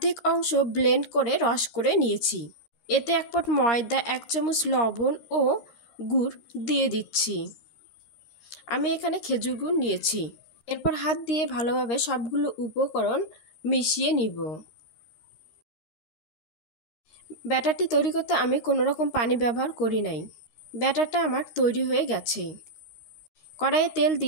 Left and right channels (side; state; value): right; late; 13 ms